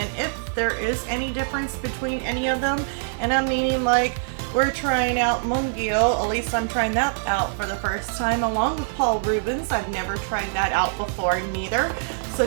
if there is any difference between any of them, and I'm meaning like we're trying out Mungyo, at least I'm trying that out for the first time along with Paul Rubens. I've never tried that out before neither. So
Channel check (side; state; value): left; silent; digital silence